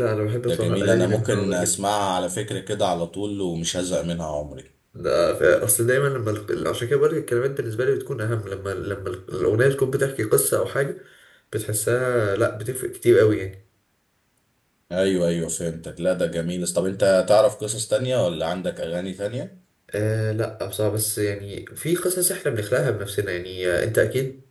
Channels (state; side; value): identical; both; correlation 1.00